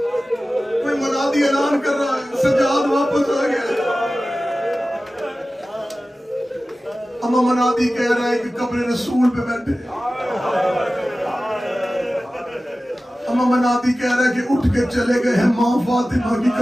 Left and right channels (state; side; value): normal; both; correlation 0.96